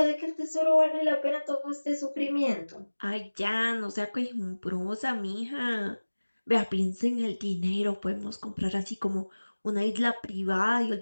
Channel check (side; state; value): both; inverted; correlation -1.00